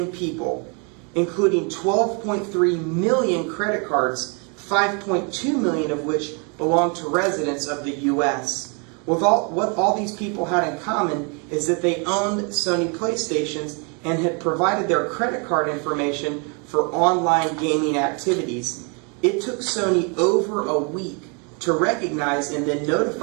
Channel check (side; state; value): left; quieter; 35.3 dB